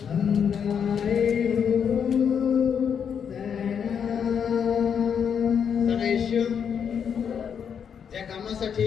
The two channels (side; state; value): right; quieter; 7.5 dB